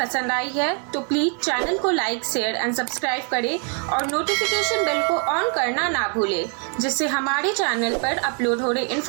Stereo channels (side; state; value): left; quieter; 40.0 dB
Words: आई है तो प्लीज चैनल को लाइक, शेयर एंड सब्सक्राइब करें और नोटिफिकेशन बेल को ऑन करना ना भूलें, जिससे हमारे चैनल पर अपलोड हो रहे